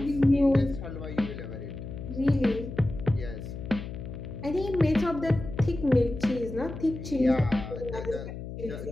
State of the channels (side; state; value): left; noise; hum, 9 dB below the sound